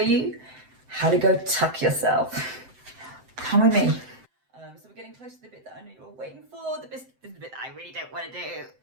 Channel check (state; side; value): late; left; 7.8 ms